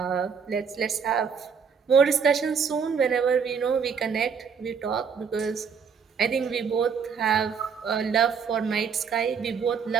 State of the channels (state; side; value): quieter; left; 6.3 dB